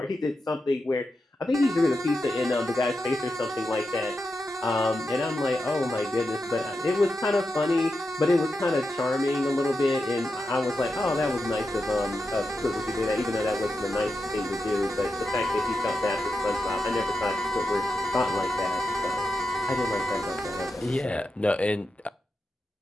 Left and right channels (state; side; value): normal; both; correlation 0.88